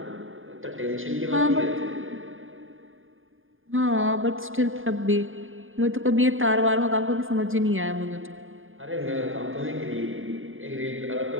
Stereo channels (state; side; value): late; left; 0.59 ms